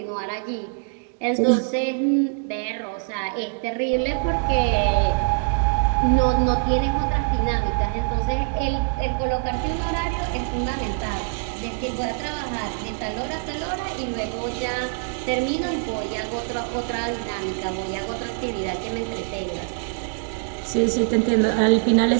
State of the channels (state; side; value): silent; left; 63 dB below the other